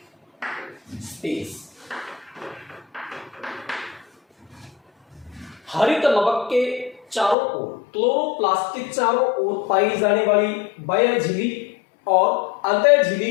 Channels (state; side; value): drops out; right; at 7.4 s